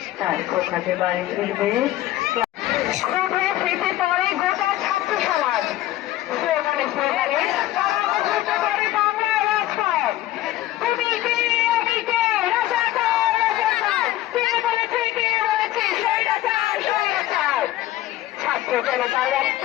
তার কোখাতে বাড়ি ফিরবে স্মৃতি পরে গোটা ছাত্র সমাজ স্লোগানে স্লোগানে করে বাংলা রাজপথ। তুমি কে আমি কে, রাজাকার রাজাকার, কে বলেছে কে বলেছে স্বৈরাচার স্বৈরাচার। ছাত্র জনতার রক্ত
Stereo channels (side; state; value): right; quieter; 14.8 dB